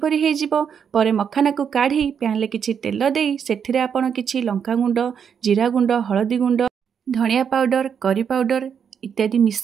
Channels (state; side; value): quieter; left; 7.4 dB